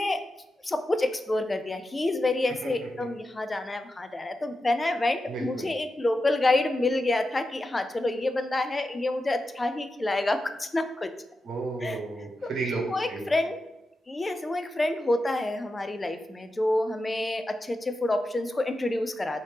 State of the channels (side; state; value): both; normal; correlation 0.90